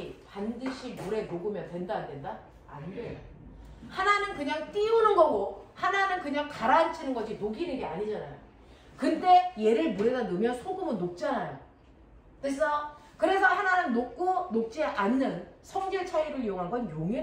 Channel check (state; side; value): identical; both; correlation 1.00